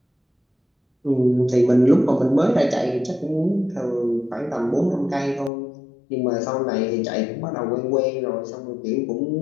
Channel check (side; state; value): right; drops out; at 5.5 s